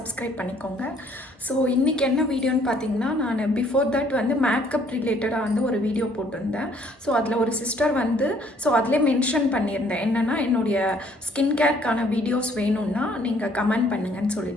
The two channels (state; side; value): normal; both; correlation 0.62